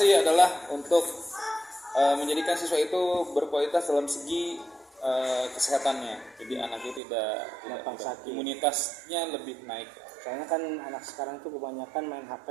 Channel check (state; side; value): drops out; left; at 7.0 s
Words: adalah untuk menjadikan siswa itu berkualitas dalam segi kesehatannya. Jadi anaknya tidak imunitasnya lebih naik. Soalnya kan anak sekarang tuh kebanyakan main